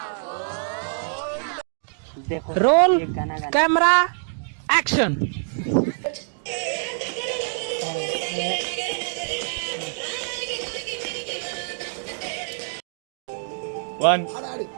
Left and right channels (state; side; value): silent; left; digital silence